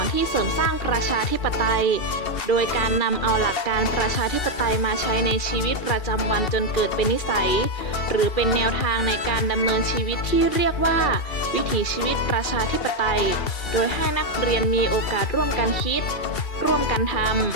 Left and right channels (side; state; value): right; late; 2.7 ms